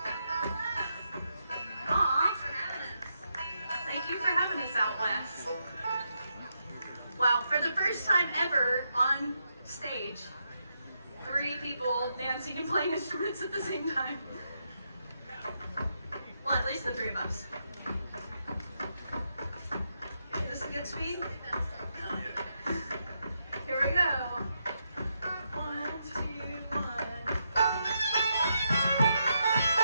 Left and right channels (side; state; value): both; inverted; correlation -0.82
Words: Aw, thank you for having us out west. Wow, for the first time ever on stage, 3 people dancing and playing instruments at the same time. Well, at least the 3 of us. Okay, this is a good speed. Here we go. 1, 2, 1.